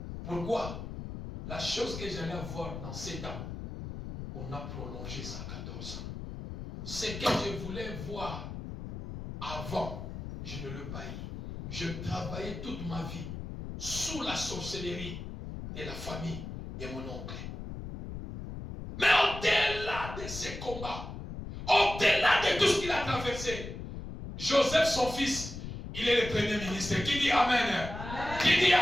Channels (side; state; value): left; noise; rumble, 8 dB below the sound